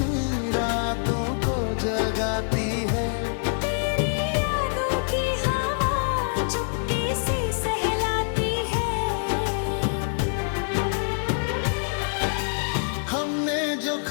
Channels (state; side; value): silent; right; digital silence